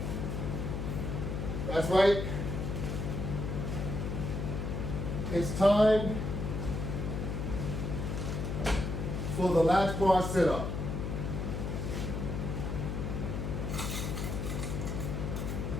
That's right. It's time for the latch bar sit-up.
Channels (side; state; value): left; noise; hum, 2 dB below the sound